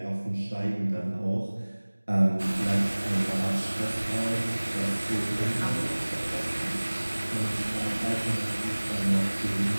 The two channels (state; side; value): inverted; both; correlation -1.00